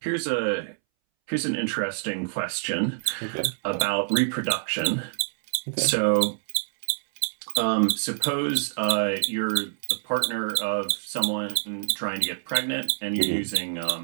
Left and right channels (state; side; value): silent; left; 61 dB below the other